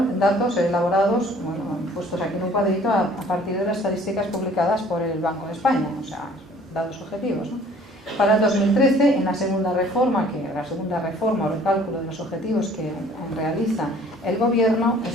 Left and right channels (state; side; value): normal; both; correlation 0.54